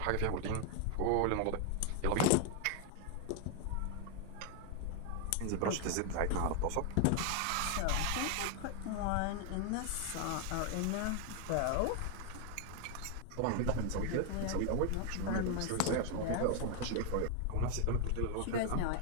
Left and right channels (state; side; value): different; both; correlation 0.00